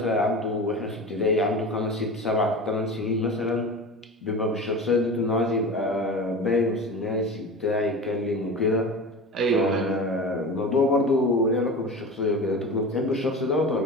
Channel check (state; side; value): normal; both; correlation 0.31